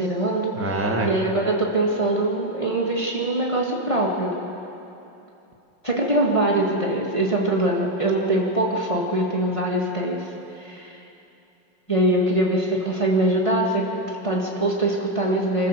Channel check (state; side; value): late; right; 5.5 ms